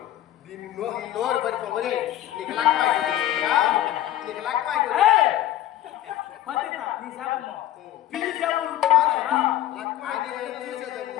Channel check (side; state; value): right; quieter; 12.9 dB